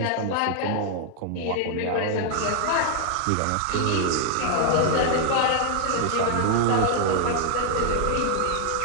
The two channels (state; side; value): different; both; correlation 0.00